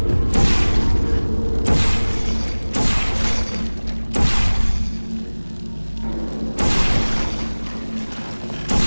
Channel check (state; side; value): inverted; both; correlation -1.00